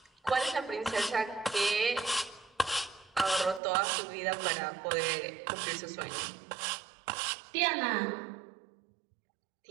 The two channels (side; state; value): left; drops out; at 3.6 s